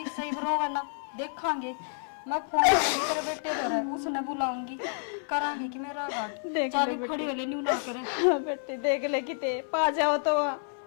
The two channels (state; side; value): silent; right; 56 dB below the other